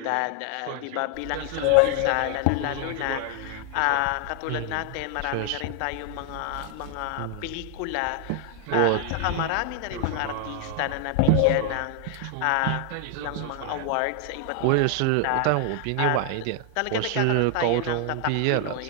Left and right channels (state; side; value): different; both; correlation 0.00